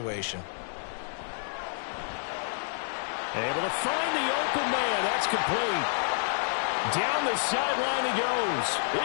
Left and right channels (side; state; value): right; silent; digital silence